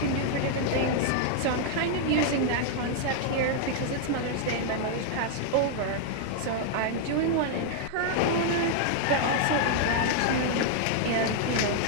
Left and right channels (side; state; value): both; different; correlation 0.00